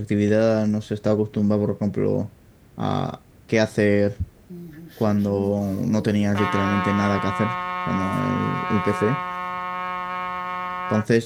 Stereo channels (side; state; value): both; identical; correlation 1.00